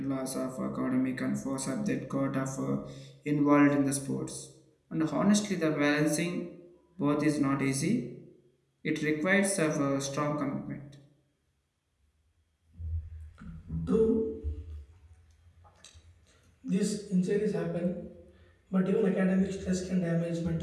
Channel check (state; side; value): identical; both; correlation 1.00